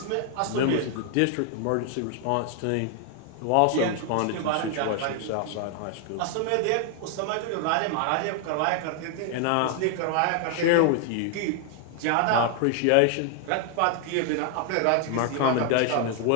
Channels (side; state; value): both; different; correlation 0.00